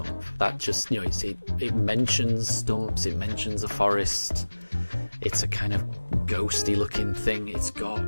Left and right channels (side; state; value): both; inverted; correlation -1.00